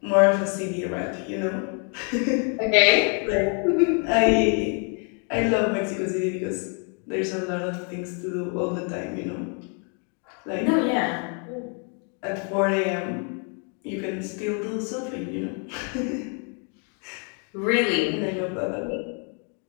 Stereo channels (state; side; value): quieter; right; 39.9 dB